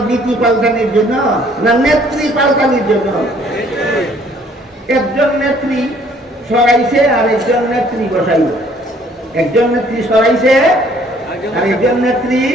নীতি পাল্টানির জন্য না নেত্রী পাল্টানির জন্য। একজন নেত্রী সরাইছে আর একজন নেত্রী বসাইব, একজন নেত্রী সরাইছে আর একজন নেত্রী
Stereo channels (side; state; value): both; normal; correlation 0.60